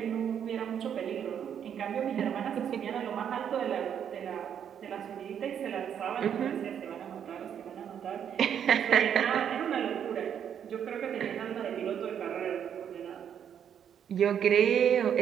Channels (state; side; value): quieter; left; 8.7 dB